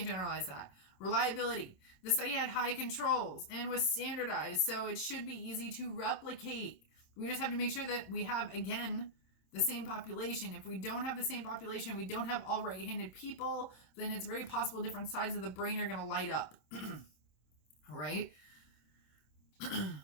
generalize that. Reliability. The study had high controls and was standardized, so it should be easy to replicate. We just have to make sure that we have, again, the same population. If we don't have the same population, we don't have all right-handed people, then it's very possible different sides of the brain are going to light up. All right.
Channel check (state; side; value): late; right; 26 ms